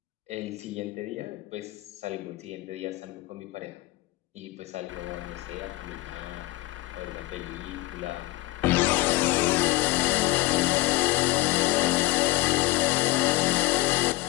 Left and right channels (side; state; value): right; quieter; 19.4 dB